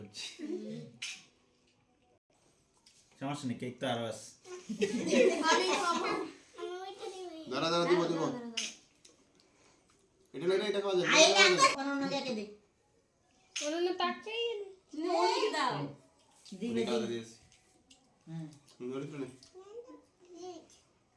সমস্যা নেই কেক তো আরো আছে আমি খাবো আমি ওইটা দিই দাঁড়া দাঁড়া দিব দিব এটা লইলে এটা খাওয়া যাবে আই না কোন নাকে দে ওনা তাকাই অনেক দাও। দিবে খাওয়া দিয়েছি হুম ধরে তো নেই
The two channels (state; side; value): identical; both; correlation 1.00